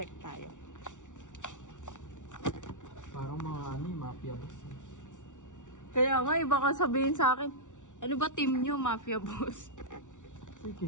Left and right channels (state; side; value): late; right; 0.86 ms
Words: tayo. Parang mga ano yung mafia boss. Kaya nga, iba ka sabihin sa akin. Ano ba team nyo, mafia boss?